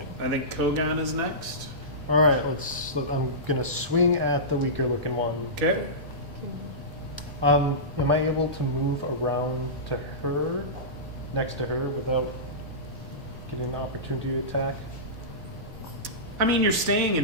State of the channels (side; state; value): both; normal; correlation -0.19